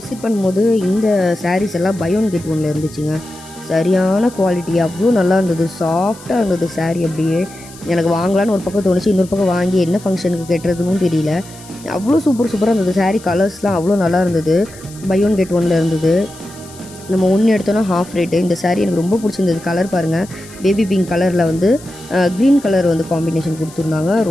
பண்ணும்போது இந்த சாரீஸ் எல்லாம் பை 1 கெட் 1ல் இருந்துச்சுங்க. சரியான குவாலிட்டி, அவ்வளோ நல்லா இருந்தது. சாஃப்டாக இருந்தது சாரீ. அப்படியே எனக்கு வாங்கலான்னு ஒரு பக்கம் தோணுச்சு. இன்னொரு பக்கம் வாங்கி என்ன ஃபங்க்ஷனுக்கு கட்டுறதுன்னு தெரியல. அவ்வளோ சூப்பராக இருந்தது. சாரீ கலர்ஸ்லாம் அவ்வளோ நல்லா இருந்தது. பை 1 கெட் 1ல் இருந்தது. நம்ம ஒன்று எடுத்தோன்னா ஹாஃப் ரேட்டு. இந்த சாரீ எனக்கு ரொம்ப பிடிச்சிருந்தது. கலர் பாருங்கள், பேபி பிங்க் கலரில் வந்து க்ரீன் கலர் வந்து காம்பினேஷன் கொடுத்துருந்தாங்க.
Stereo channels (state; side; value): noise; left; hiss, 20 dB below the sound